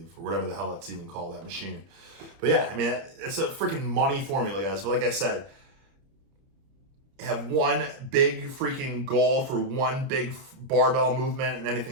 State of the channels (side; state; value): left; late; 30 ms